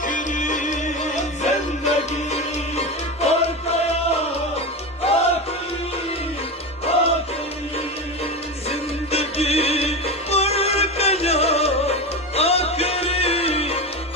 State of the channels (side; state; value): both; normal; correlation 0.21